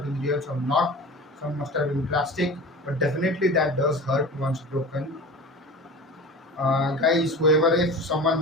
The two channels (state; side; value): normal; both; correlation 0.35